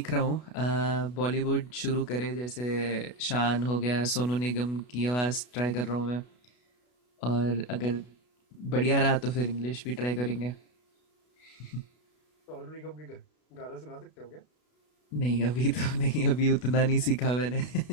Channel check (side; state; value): right; late; 32 ms